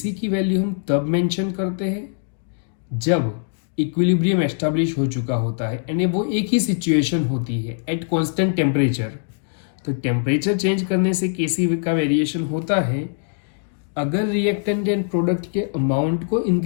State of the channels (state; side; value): silent; right; digital silence